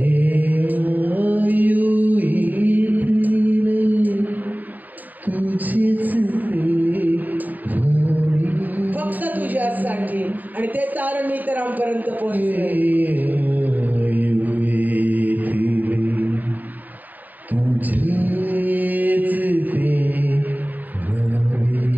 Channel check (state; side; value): late; left; 0.084 ms